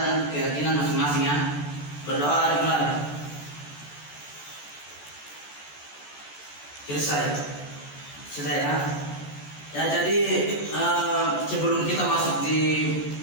keyakinan masing-masing ya. Berdoa dimulai. Selesai ya. Ya, jadi sebelum kita masuk di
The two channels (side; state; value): right; late; 14 ms